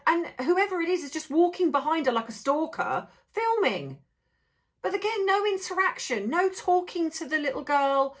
And whoever it is just walking behind her like a stalker, filming. But again, no interaction, no talking to the little girl,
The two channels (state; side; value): identical; both; correlation 1.00